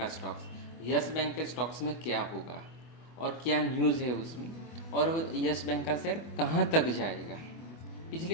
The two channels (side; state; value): right; late; 24 ms